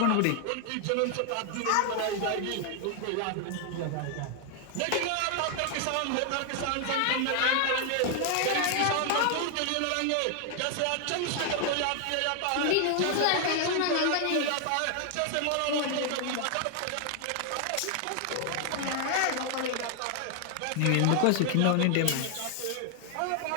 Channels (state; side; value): different; both; correlation 0.00